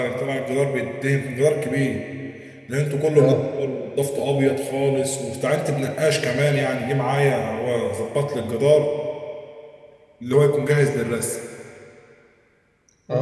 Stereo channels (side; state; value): both; identical; correlation 1.00